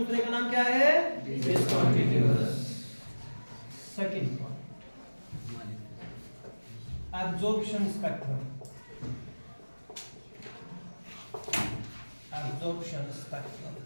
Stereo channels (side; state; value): both; inverted; correlation -1.00